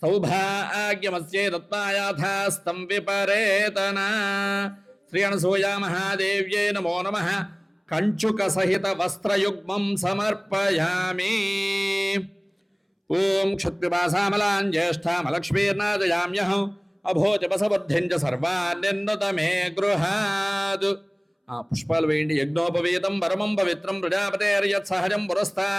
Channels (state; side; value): identical; both; correlation 1.00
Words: సౌభాగ్యమస్యై దత్తాయాథాస్తం విపరేతన శ్రీ అనసూయా మహాదేవ్యై నమో నమః కంచుక సహిత వస్త్రయుగ్మం సమర్పయామి ఓం క్షత్పిపాసామలాం జ్యేష్ఠామలక్ష్మీర్నాదయామ్యహం అభోజపసబుద్ధిం చ సర్వాన్ నిర్నుత మే గృహాద్ పుష్పాలు వేయండి యజ్ఞోపవీతం పరమం పవిత్రం ప్రజాపతేర్యత్ సహజం